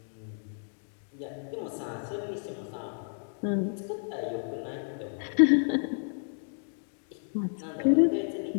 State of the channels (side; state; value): right; silent; digital silence